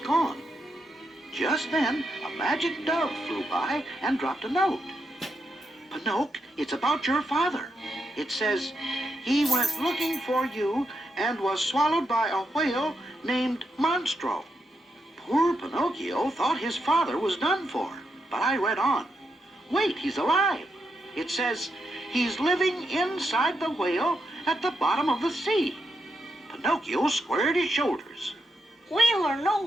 Just then, a magic dove flew by and dropped a note. "Pinocchio, it's about your father. It says, he went looking for you and was swallowed by a whale named Monstro." Poor Pinocchio thought his father was done for, but I read on. Wait, he's alive. It says, he's living inside the whale at the bottom of the sea. Pinocchio squared his shoulders. Whale or no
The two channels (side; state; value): both; normal; correlation 0.83